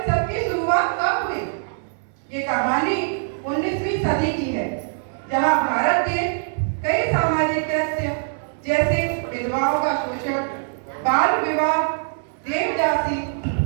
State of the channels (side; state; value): left; silent; 64 dB below the other